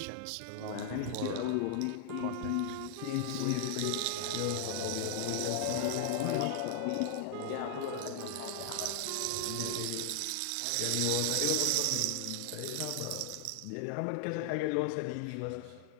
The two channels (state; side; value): different; both; correlation 0.00